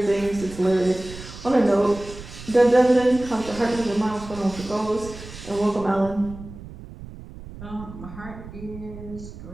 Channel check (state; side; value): noise; right; rumble, 14 dB below the sound